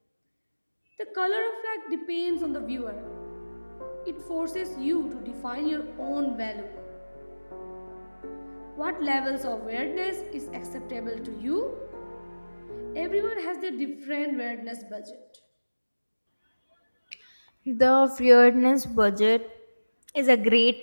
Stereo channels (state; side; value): inverted; both; correlation -1.00